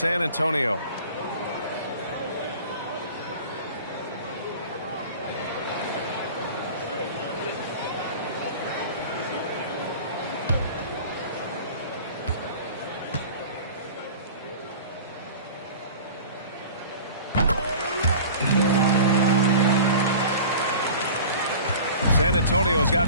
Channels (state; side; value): inverted; both; correlation -0.40